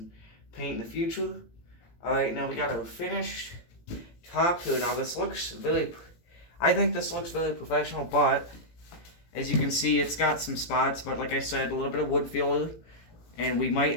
paint in the future. Alright, now we got our finished top here. Now this looks I think this looks very professional, but as you can see, it's got some spots, but like I said, a little bit of wood filler, and we might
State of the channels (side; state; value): right; late; 17 ms